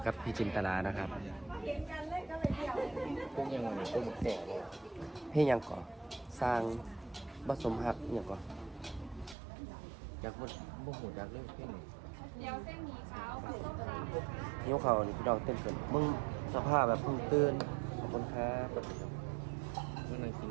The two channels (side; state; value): left; drops out; at 9.3 s